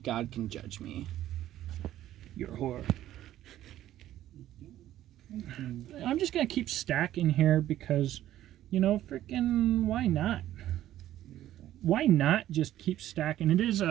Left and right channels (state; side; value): quieter; left; 13.1 dB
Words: can judge me. You're a whore. I'm just going to keep stacking here because, you know, freaking why not? Why not just keep stacking? It is